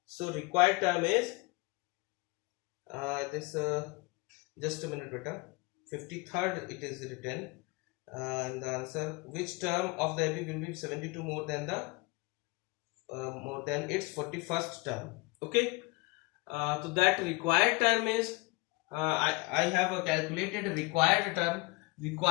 So required term is this just a minute beta, 53rd it is written in the answer. Which term of the AP will be 72 more than its 41st term? Okay. So that required term is I have calculated required term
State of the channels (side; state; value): right; quieter; 25.3 dB